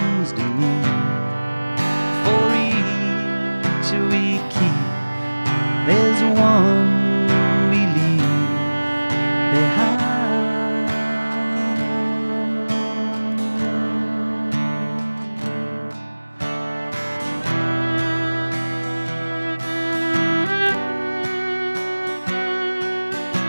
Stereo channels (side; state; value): both; inverted; correlation -1.00